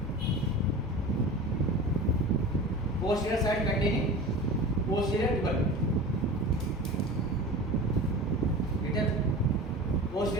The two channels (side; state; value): both; normal; correlation 0.34